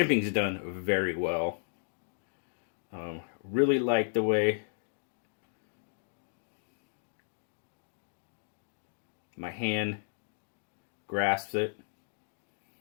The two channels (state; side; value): silent; right; digital silence